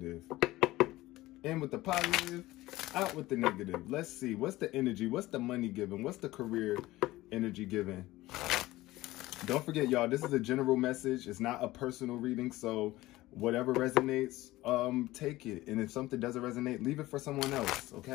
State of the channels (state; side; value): quieter; right; 17.8 dB